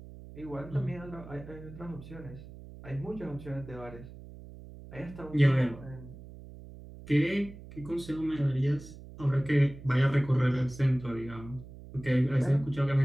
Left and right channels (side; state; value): right; noise; hum, 16 dB below the sound